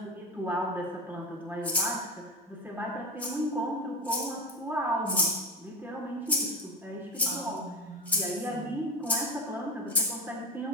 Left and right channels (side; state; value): both; normal; correlation 0.21